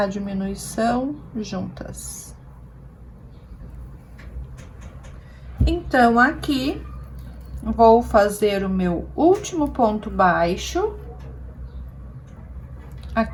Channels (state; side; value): identical; both; correlation 1.00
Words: diminuição juntas. Então, aqui, vou fazer o meu último ponto baixo,